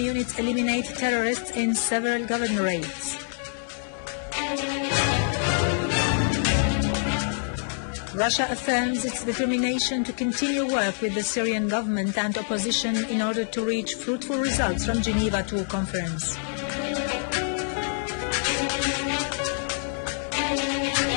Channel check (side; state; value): right; silent; 61 dB below the other